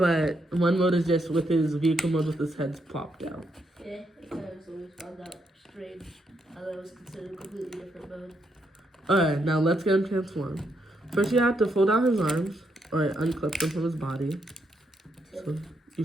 one mode is just with his vehicle mode with his head popped out. Yeah, I kind of always found that strange. How that was considered a completely different mode. Alright, now let's get him transformed. First you have to fold out his arms, or unclip them from his body. So you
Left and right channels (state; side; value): normal; both; correlation 0.78